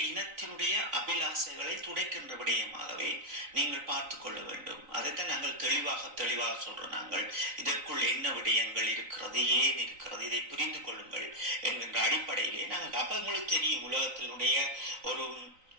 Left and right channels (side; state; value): left; late; 3.9 ms